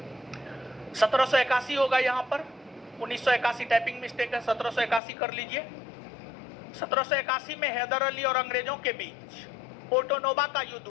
1781 होगा यहां पर, 1981 टाइपिंग मिस्टेक है, 1781 कर लीजिए। 1781 में हैदर अली और अंग्रेजों के बीच पोर्टोनोवा का युद्ध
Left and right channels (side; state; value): right; drops out; at 5.0 s